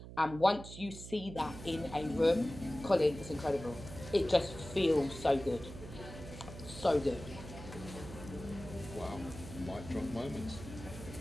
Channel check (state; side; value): noise; right; hum, 13 dB below the sound